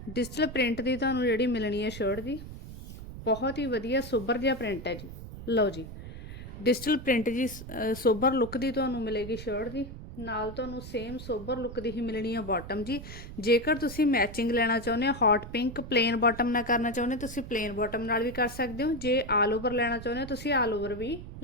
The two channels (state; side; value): noise; right; rumble, 12 dB below the sound